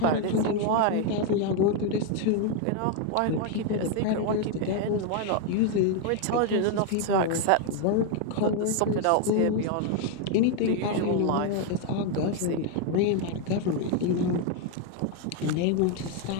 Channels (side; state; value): both; different; correlation 0.01